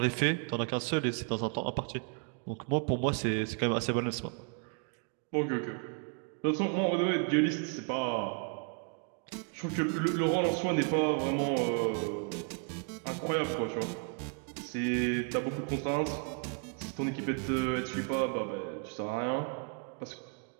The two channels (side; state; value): left; quieter; 39.4 dB